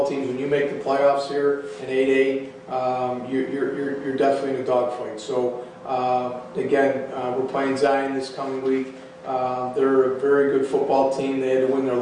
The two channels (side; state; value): both; identical; correlation 1.00